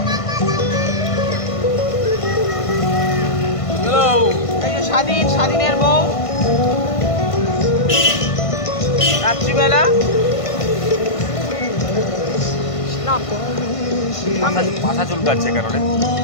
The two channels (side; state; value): right; late; 1.5 ms